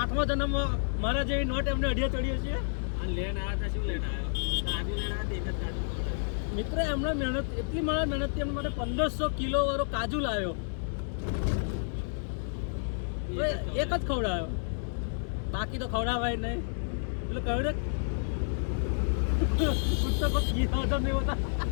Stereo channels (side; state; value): right; silent; digital silence